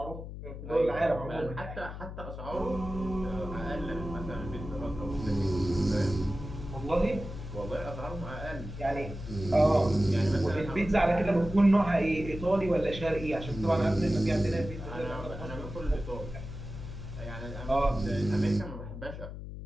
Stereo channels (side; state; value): left; noise; hum, 9 dB below the sound